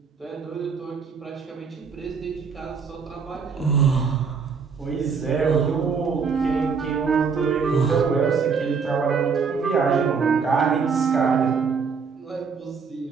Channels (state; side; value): quieter; left; 5.6 dB